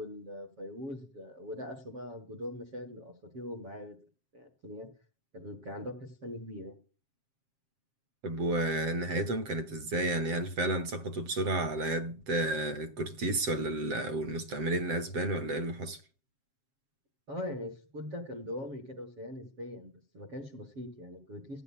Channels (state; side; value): late; left; 7.4 ms